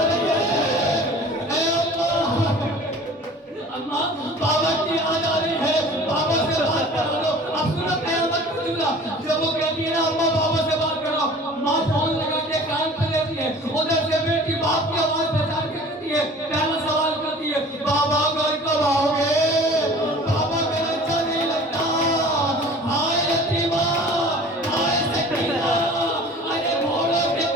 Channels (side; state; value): both; normal; correlation 0.44